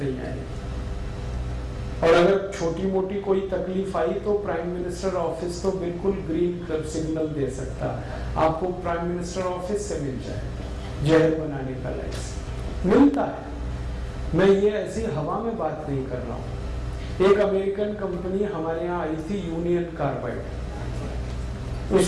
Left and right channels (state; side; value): identical; both; correlation 1.00